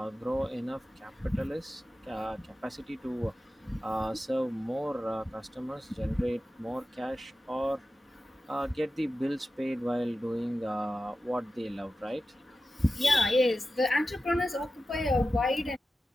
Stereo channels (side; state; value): both; normal; correlation 0.93